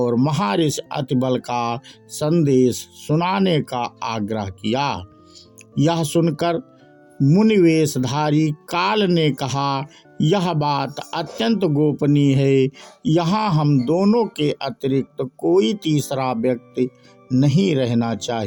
महर्षि अति बल का संदेश सुनाने का आग्रह किया। यह सुनकर मुनिवेशधारी काल ने कहा, यह बात अत्यंत गोपनीय है। यहाँ हम दोनों के अतिरिक्त कोई तीसरा व्यक्ति नहीं रहना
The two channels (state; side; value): identical; both; correlation 1.00